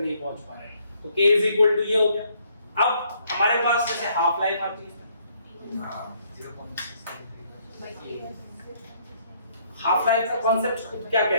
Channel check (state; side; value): inverted; both; correlation -0.67